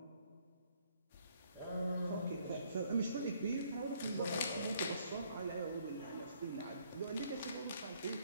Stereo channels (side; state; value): both; inverted; correlation -0.65